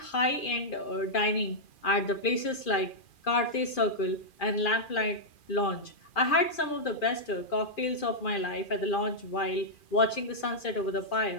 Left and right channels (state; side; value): late; right; 2.4 ms